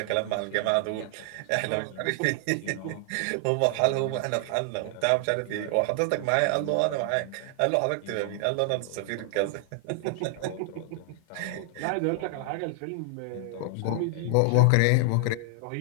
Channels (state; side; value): different; both; correlation 0.00